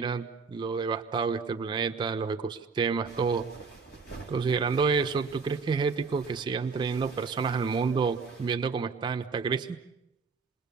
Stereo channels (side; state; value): left; quieter; 5.0 dB